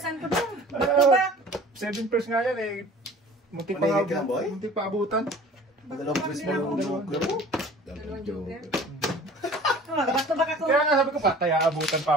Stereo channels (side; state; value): both; normal; correlation 0.46